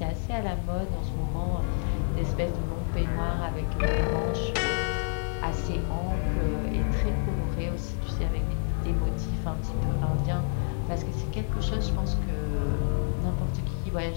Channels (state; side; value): silent; right; 59 dB below the other